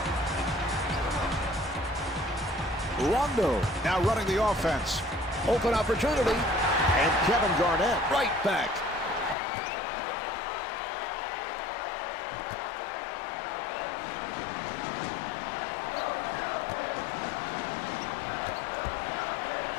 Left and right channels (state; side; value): drops out; right; at 9.3 s